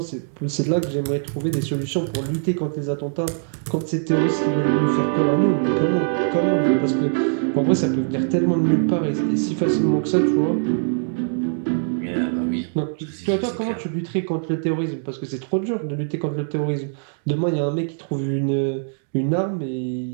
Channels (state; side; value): silent; left; digital silence